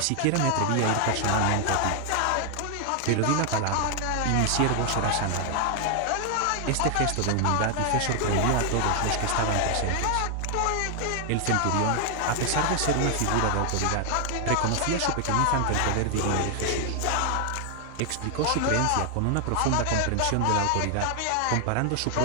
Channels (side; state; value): both; different; correlation 0.00